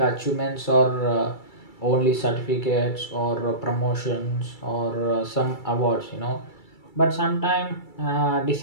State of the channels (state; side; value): late; right; 2.3 ms